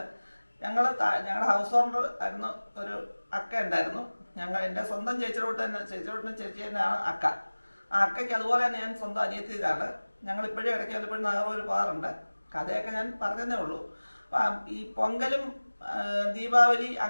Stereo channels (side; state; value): both; inverted; correlation -1.00